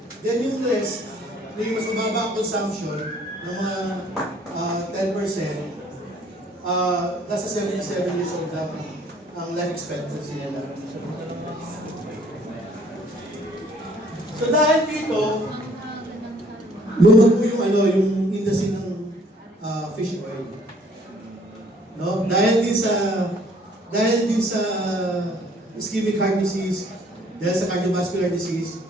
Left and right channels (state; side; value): normal; both; correlation 0.60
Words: Then yung rest, yung mas mababa ang consumption ng mga 10%, nasa 77 years old lang ang life expectancy nila. So dahil dito, lumago yung industry ng fish oil. No? Dahil din sa ischemic heart disease, dahil sa cardiovascular disease,